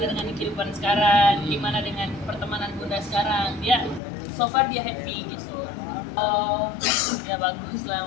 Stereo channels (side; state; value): right; drops out; at 4.0 s